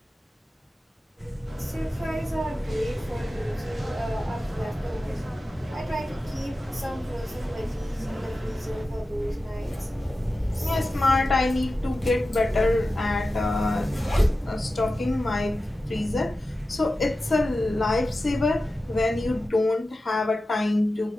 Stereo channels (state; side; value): normal; both; correlation 0.94